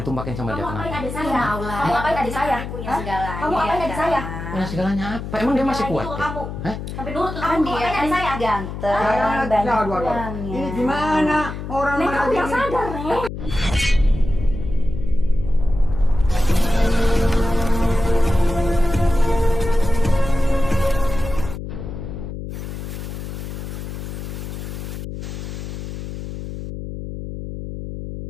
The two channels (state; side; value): noise; left; hum, 8 dB below the sound